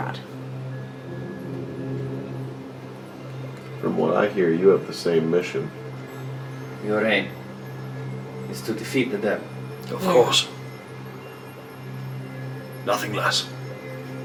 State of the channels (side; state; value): both; identical; correlation 1.00